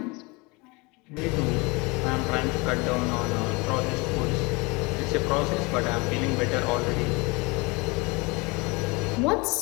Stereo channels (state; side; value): quieter; right; 26.6 dB